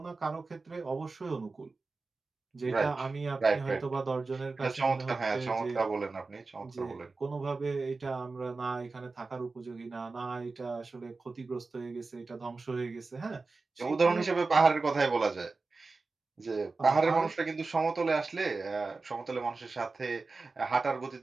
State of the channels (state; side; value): quieter; left; 3.9 dB